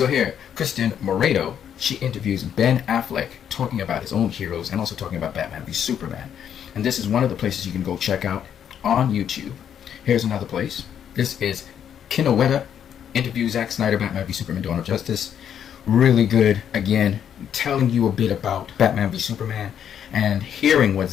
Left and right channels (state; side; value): quieter; right; 9.0 dB